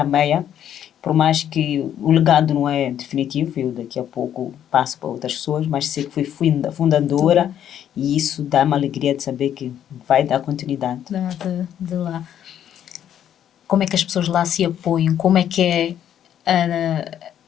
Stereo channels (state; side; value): quieter; right; 10.1 dB